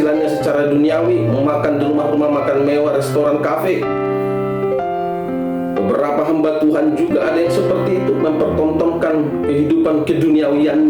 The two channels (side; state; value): both; identical; correlation 1.00